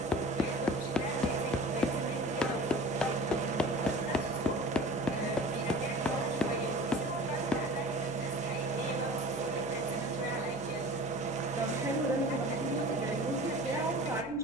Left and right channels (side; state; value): right; noise; hum, 19 dB below the sound